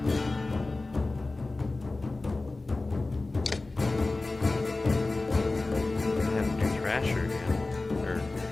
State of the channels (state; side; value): quieter; right; 3.2 dB